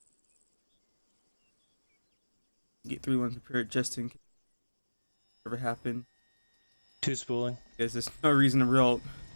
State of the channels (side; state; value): both; inverted; correlation -1.00